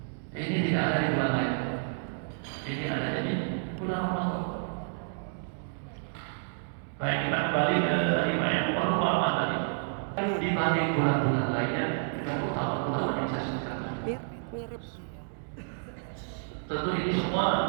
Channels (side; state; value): left; silent; digital silence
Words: Ini tidak ada di bulan lain. Ini ada di bulan Ramadan. Baik, kita kembali ke lima yang pertama tadi. Dibanding bulan-bulan lainnya, dengan utama bulan yang saya sebutkan. Mirip. Tentu ini semua.